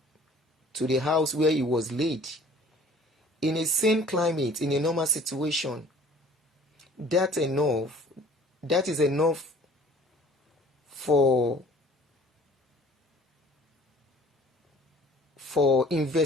to the house where he was laid. In a sane climate, in a normal situation, that is enough for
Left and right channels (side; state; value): both; normal; correlation 0.51